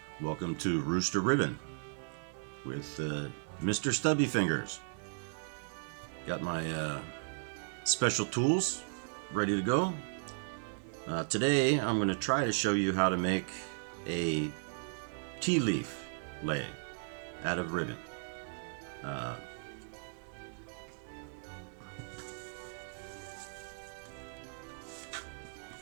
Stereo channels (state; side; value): silent; left; 54 dB below the other